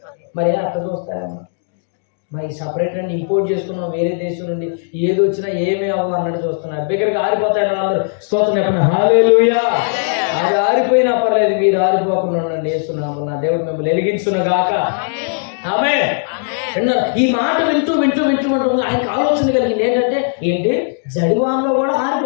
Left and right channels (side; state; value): right; silent; digital silence